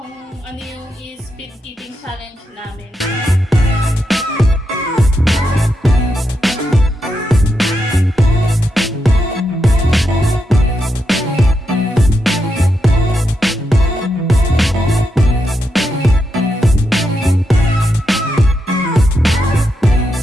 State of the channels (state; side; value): normal; both; correlation 0.84